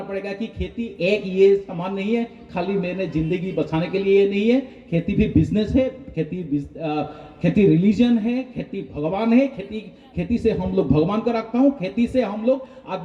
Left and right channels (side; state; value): both; identical; correlation 1.00